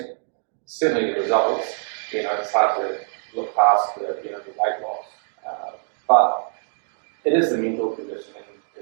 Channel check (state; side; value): silent; left; 58 dB below the other